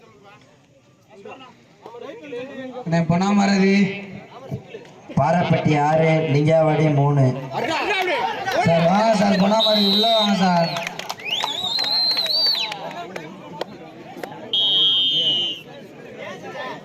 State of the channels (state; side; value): identical; both; correlation 1.00